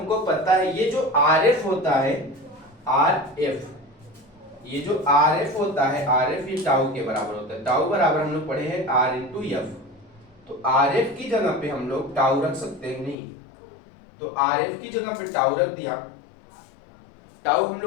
पता है, ये जो आर एफ होता है, आर एफ, ये जो आर एफ होता है, आर एफ ये टाउ के बराबर होता है। टाउ बराबर हम लोग पढ़े हैं आर इंटू एफ, तो आर एफ की जगह पे हम लोग टाउ रख सकते हैं नहीं, तो आर एफ की जगह पे टाउ रख दिया। टाउ हम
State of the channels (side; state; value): right; drops out; at 13.2 s